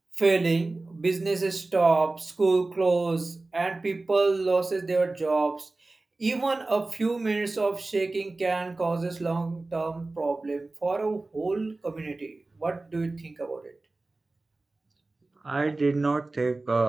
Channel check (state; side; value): quieter; left; 3.2 dB